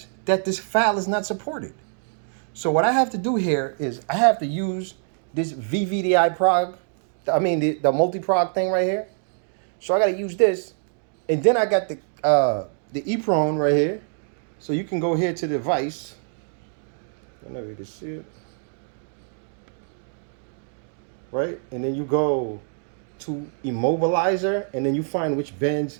that this file is not supported. So what I have to do here is I have to use this VVDI prog, the multi-prog thing right here. So I got to use this, and then I got the EEPROM right here. So you can go here to the device. I don't know if you can see it, right? And then you go to immobilizer, and then you find which bends.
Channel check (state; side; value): silent; left; 58 dB below the other